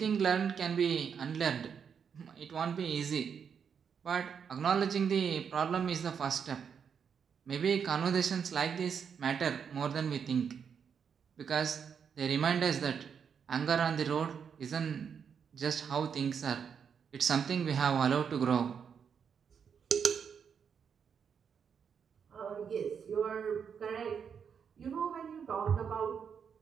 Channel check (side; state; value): left; quieter; 7.0 dB